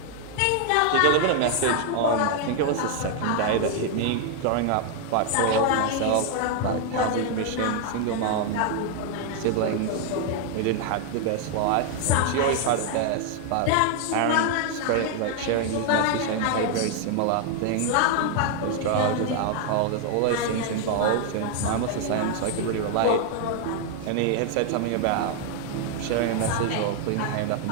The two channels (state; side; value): different; both; correlation 0.00